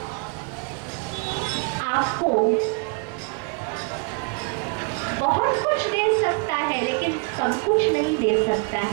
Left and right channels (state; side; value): quieter; left; 33.7 dB